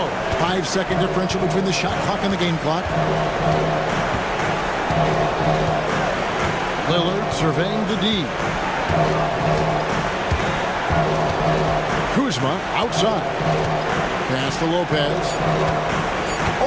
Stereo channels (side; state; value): both; identical; correlation 1.00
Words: 5-second differential between the shot clock and the game clock. Lillard surveying the D. Kuzma outside. Pass to Lopez.